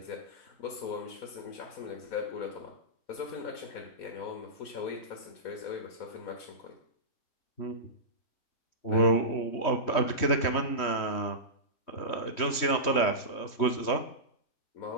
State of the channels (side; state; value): right; late; 3.1 ms